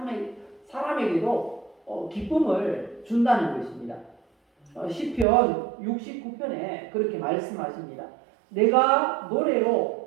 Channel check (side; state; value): left; drops out; at 5.2 s